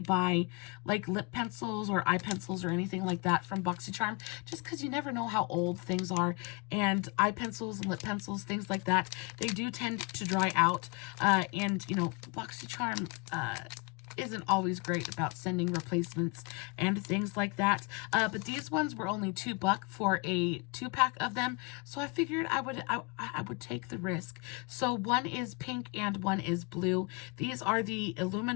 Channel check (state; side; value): quieter; right; 29.6 dB